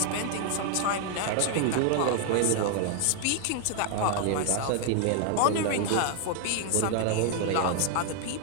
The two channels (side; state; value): both; different; correlation 0.00